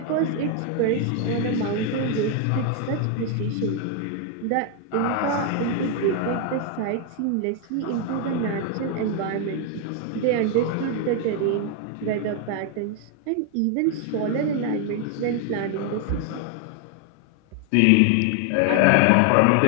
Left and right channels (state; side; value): different; both; correlation 0.00